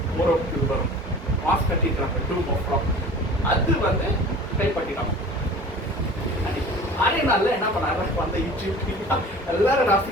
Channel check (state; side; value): normal; both; correlation 0.42